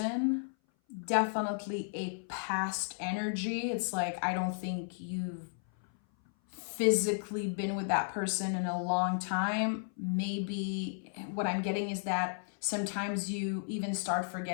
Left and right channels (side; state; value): right; silent; 55 dB below the other